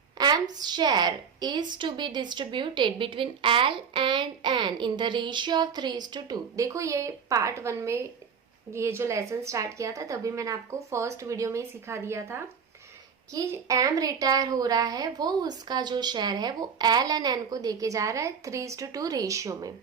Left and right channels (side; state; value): left; quieter; 6.5 dB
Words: M's share is to be distributed between L and N in the ratio of 3:2। देखो ये पार्ट 1 में ये जो लेसन स्टार्ट किया था तभी मैंने आपको फर्स्ट वीडियो में ही सिखा दिया था कि एम रिटायर हो रहा है, वो उसका जो शेयर है वो एल एंड एन को देके जा रहा है 3:2 रेशियो में।